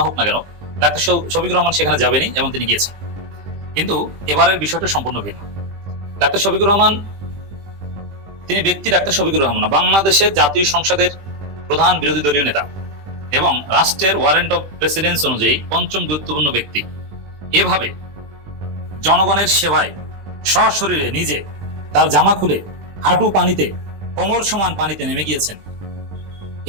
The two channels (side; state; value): left; late; 20 ms